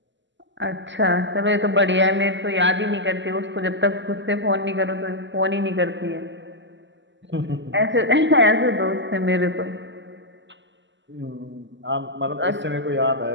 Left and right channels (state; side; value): late; left; 0.54 ms